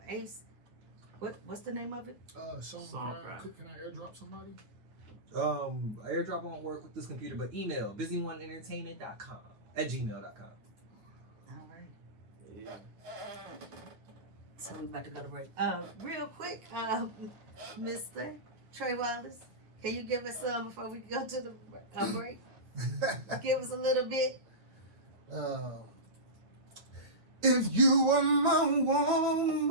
Ace, What's the name of it? Songcraft. Can I airdrop somebody? Airdrop won't work with this computer, but email busyoneeentertainment.com@gmail.com. All right. Yeah. So we about to go to break. Real quick, Mr. Trey Wallace, can you give us some before we go to the break? Give us a little bit. If you were my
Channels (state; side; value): late; left; 9.4 ms